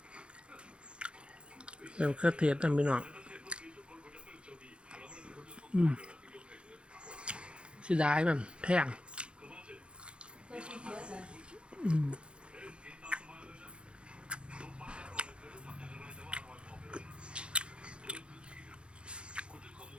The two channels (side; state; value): left; late; 0.058 ms